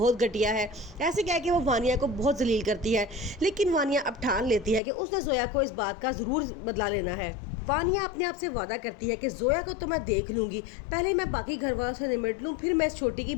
घटिया है। ऐसे कह के वो वानिया को बहुत जलील करती है, लेकिन वानिया अब ठान लेती है कि उसने जोया को इस बात का ज़रूर बदला लेना है। वानिया अपने आप से वादा करती है कि जोया को तो मैं देख लूंगी, पहले मैं बाकी घर वालों से निपट लूँ, फिर मैं इस छोटी की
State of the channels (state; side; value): drops out; right; at 4.8 s